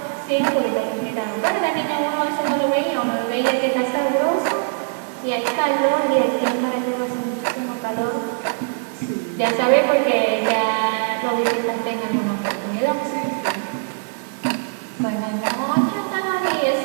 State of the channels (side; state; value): left; silent; 58 dB below the other